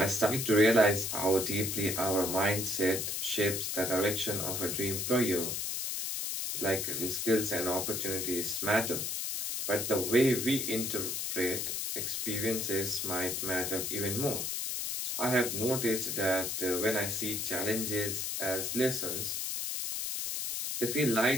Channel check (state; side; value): noise; left; hiss, 2 dB below the sound